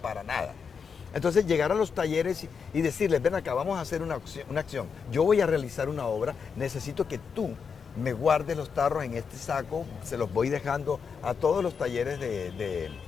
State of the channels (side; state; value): right; quieter; 6.1 dB